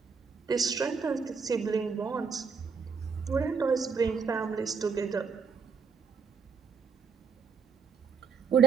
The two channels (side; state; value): left; quieter; 5.7 dB